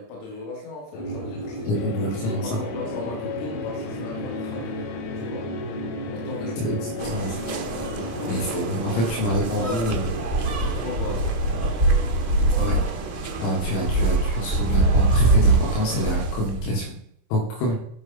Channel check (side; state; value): right; late; 27 ms